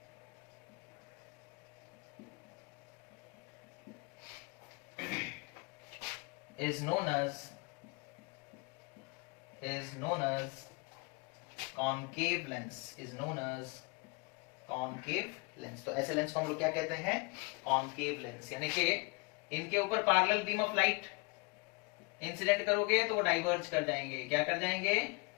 is known as concave lens, is known as concave lens। तो ऐसे lens को हम लोग क्या कहते हैं, concave lens, यानी कि इनके ऊपर parallel beam of light incident करोगे तो वो डाइवर्ज कर जाएंगे। क्या कर जाएंगे,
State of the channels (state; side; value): quieter; right; 29.1 dB